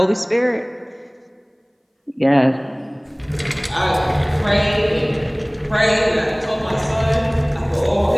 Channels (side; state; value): both; identical; correlation 1.00